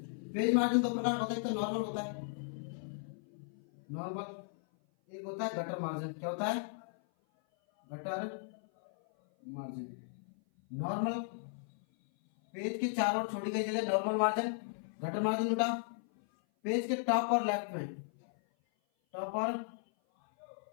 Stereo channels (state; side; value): silent; right; 54 dB below the other